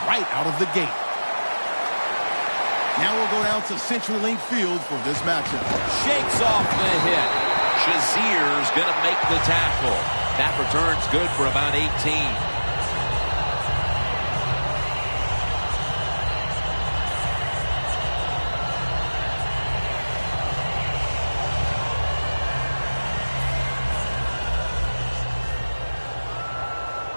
right out of the gate. Now we'll go down to CenturyLink Field for this matchup. Shakes off the hit. Shazier's going to make the tackle. That return's good for about 18.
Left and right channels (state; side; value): inverted; both; correlation -1.00